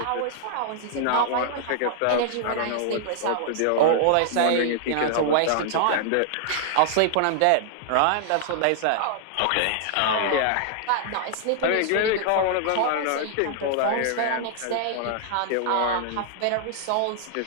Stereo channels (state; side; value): different; both; correlation -0.01